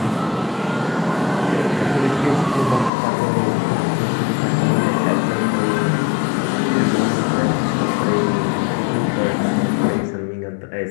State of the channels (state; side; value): drops out; right; at 2.9 s